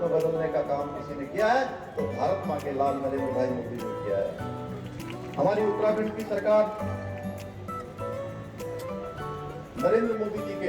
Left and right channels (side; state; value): both; identical; correlation 1.00